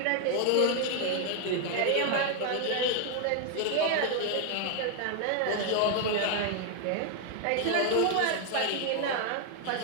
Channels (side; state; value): both; different; correlation 0.00